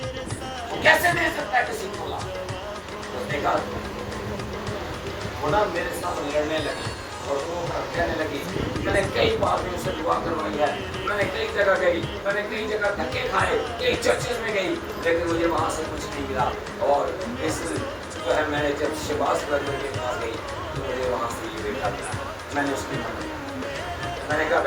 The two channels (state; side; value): identical; both; correlation 1.00